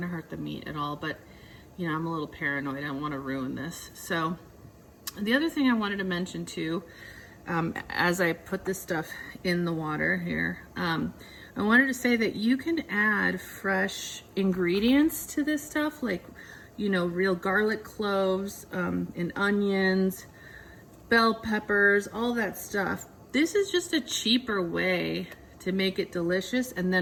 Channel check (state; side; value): identical; both; correlation 1.00